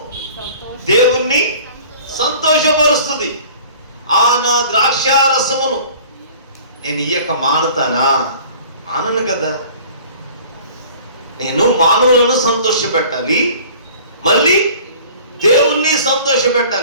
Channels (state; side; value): inverted; both; correlation -0.47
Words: దేవుణ్ణి సంతోషపరుస్తుంది. ఆ నా ద్రాక్ష రసమును నేను ఇయ్యక మానుతానా, మానను కదా. నేను మానవులను సంతోష పెట్టాలి, మళ్ళీ దేవుణ్ణి సంతోష